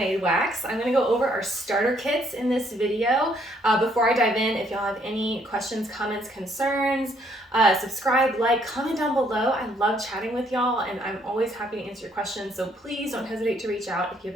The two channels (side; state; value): both; normal; correlation 0.68